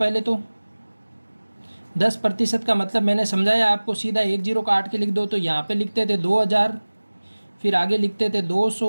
तो 10% का मतलब मैंने समझाया आपको, सीधा 1 जीरो काट के लिख दो। तो यहाँ पे लिखते थे 2,000, फिर आगे लिखते थे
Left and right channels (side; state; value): both; inverted; correlation -1.00